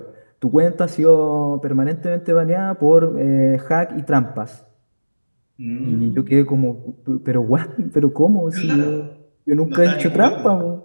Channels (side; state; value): both; inverted; correlation -1.00